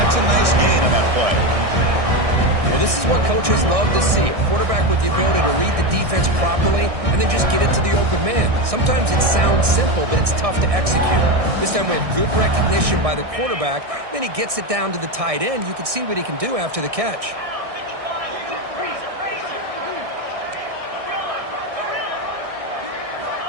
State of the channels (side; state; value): left; late; 1.6 ms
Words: a nice gain on that play. Well, this is what coaches love to see. A quarterback with the ability to read the defense properly and then just get it to the open man. Sometimes it sounds simple, but it's tough to execute. This time we have good recognition by the quarterback. Then he gets it down to the tight end. You can see what he can do after the catch.